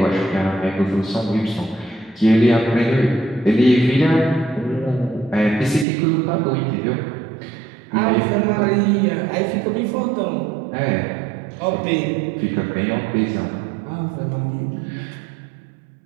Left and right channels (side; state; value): left; drops out; at 5.9 s